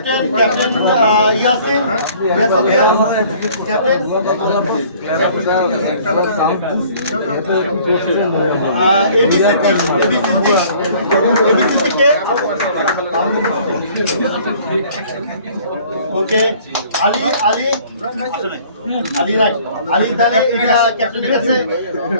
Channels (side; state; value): both; inverted; correlation -0.54